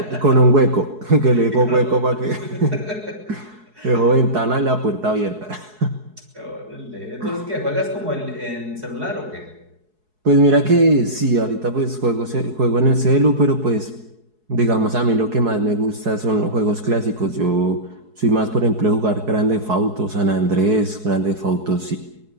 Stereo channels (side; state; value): left; late; 4.7 ms